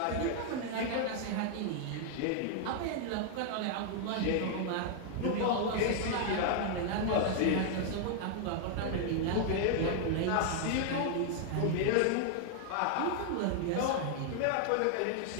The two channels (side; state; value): both; different; correlation 0.00